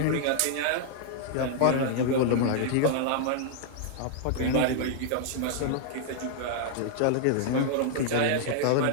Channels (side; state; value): both; different; correlation -0.01